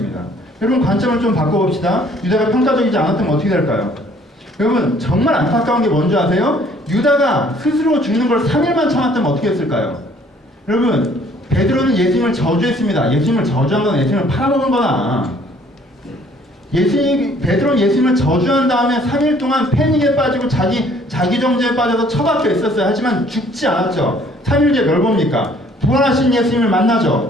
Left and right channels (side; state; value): both; normal; correlation 0.59